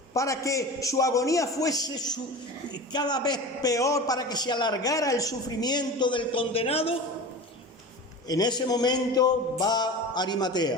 para que su agonía fuese cada vez peor, para que se alargara el sufrimiento del condenado, en ese momento va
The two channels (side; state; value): both; normal; correlation 0.32